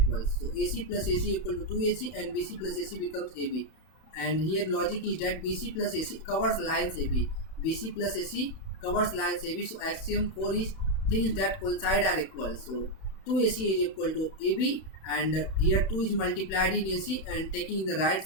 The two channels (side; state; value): right; late; 31 ms